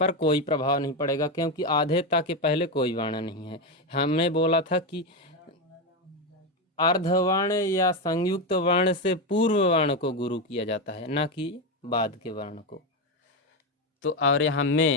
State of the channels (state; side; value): normal; both; correlation 0.11